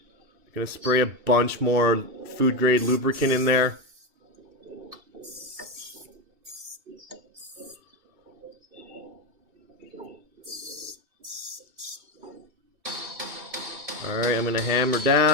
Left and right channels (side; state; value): left; late; 2.7 ms